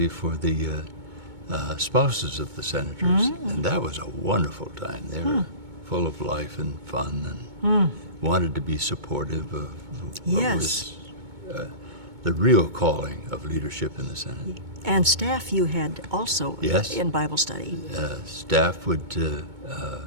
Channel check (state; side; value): late; left; 2.2 ms